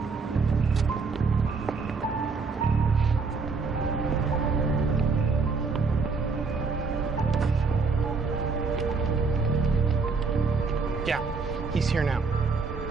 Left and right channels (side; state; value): left; quieter; 4.5 dB